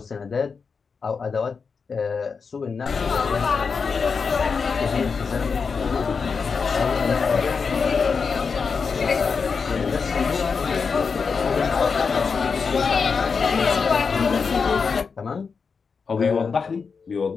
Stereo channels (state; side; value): quieter; right; 5.4 dB